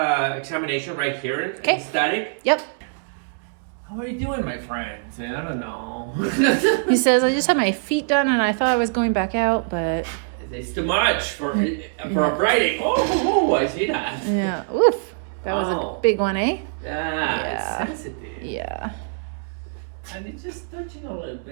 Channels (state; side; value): silent; left; digital silence